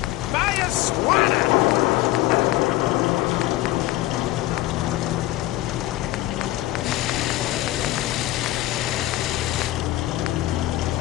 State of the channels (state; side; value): quieter; right; 16.5 dB